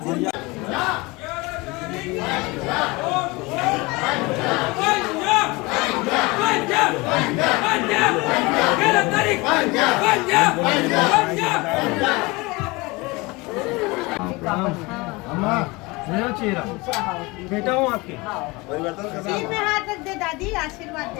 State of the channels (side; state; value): right; quieter; 24.3 dB